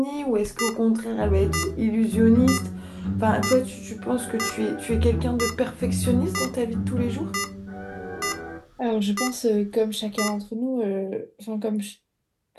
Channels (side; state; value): both; identical; correlation 1.00